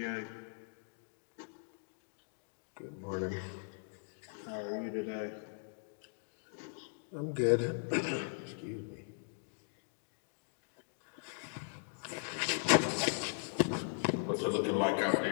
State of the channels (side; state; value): right; silent; digital silence